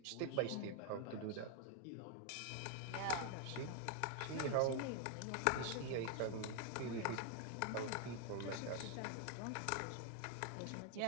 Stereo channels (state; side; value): different; both; correlation 0.00